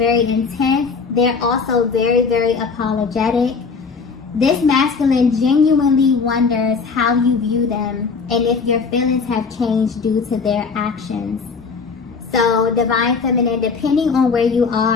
intense. They're also very, very apologetic. This masculine genuinely wonders how you view them and if your feelings have changed due to their actions. So, Divine Feminine, depending on where you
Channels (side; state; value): right; quieter; 5.0 dB